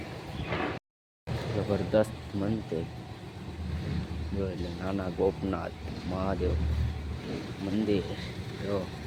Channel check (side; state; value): both; identical; correlation 1.00